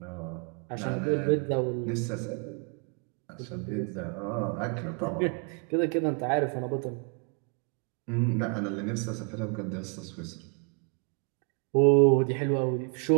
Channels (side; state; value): left; quieter; 38.5 dB